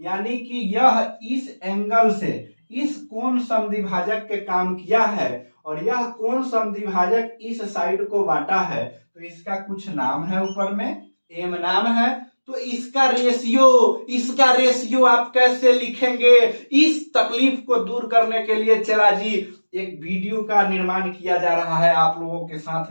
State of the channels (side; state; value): both; inverted; correlation -1.00